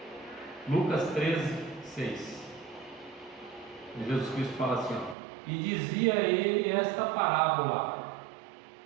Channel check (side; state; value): left; drops out; at 5.2 s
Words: Lucas 13, 6. Jesus Cristo fala assim, ó, e dizia ele esta parábola.